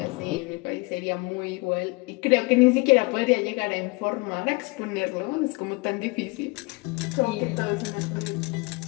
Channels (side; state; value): right; quieter; 26.8 dB